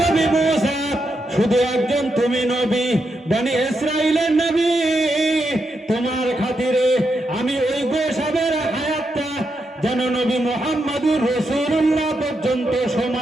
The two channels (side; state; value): both; normal; correlation 0.83